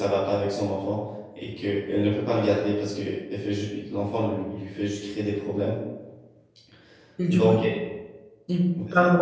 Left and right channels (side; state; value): both; identical; correlation 1.00